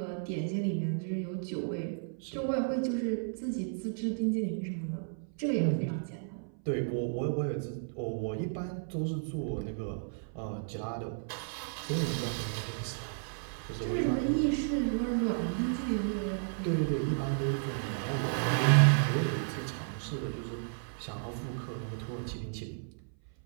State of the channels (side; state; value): left; silent; 56 dB below the other